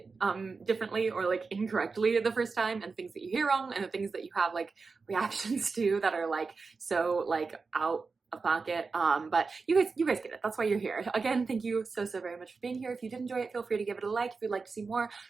differently or like incorrectly the first time, and things that you hear wrong, and the things that you have like reactions to that are like so like out of pocket. But you guys get it. That's why you're here. Again, thank you so very much for being here. If you did enjoy it, feel free to give it a like. If you'd like to see more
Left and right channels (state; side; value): quieter; left; 4.5 dB